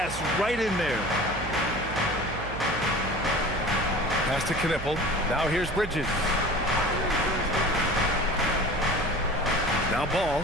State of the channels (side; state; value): right; noise; hum, 10 dB below the sound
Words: right in there. Pass to Knipple. Now here's Bridges. Now Ball.